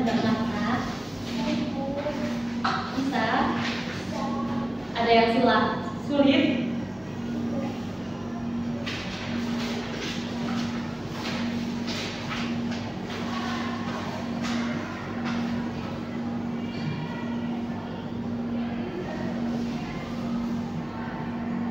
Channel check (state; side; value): noise; left; rumble, 27 dB below the sound